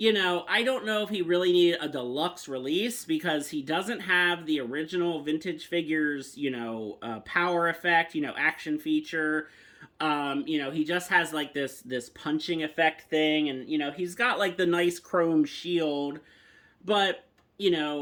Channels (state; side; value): identical; both; correlation 1.00